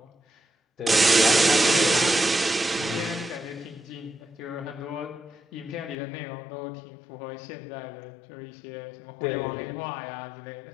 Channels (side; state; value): right; drops out; at 6.0 s